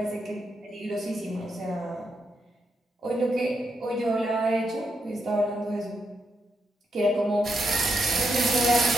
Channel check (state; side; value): normal; both; correlation 0.82